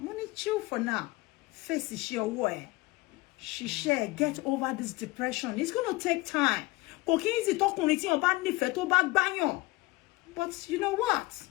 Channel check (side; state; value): right; quieter; 21.5 dB